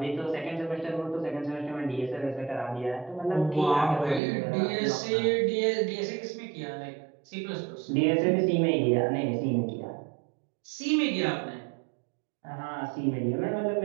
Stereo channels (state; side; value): drops out; left; at 4.2 s